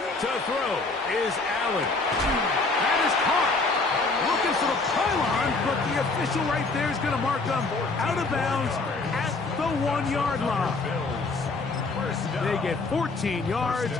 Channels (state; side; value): quieter; right; 3.6 dB